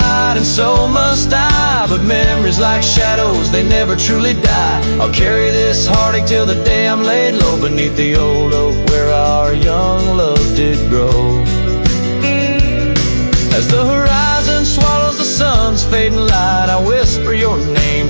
and so must I, but memories like shadows, they never truly die. I'll carry this heartache till the day I'm laid low beneath the old oak where our young love did grow. As the horizon swallows the sun's fading light, I whisper your name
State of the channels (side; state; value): both; inverted; correlation -1.00